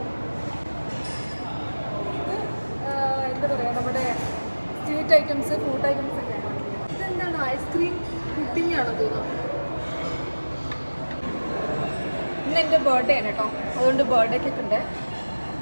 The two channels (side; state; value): both; inverted; correlation -1.00